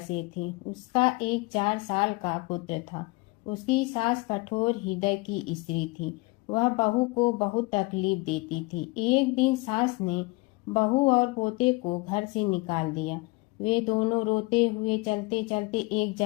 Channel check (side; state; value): right; quieter; 24.1 dB